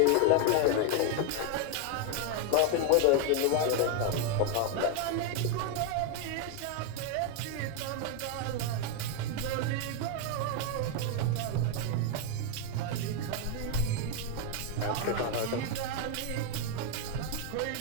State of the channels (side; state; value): both; different; correlation 0.01